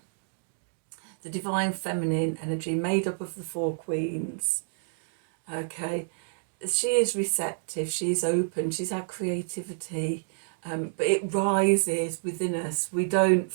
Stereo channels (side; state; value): left; silent; digital silence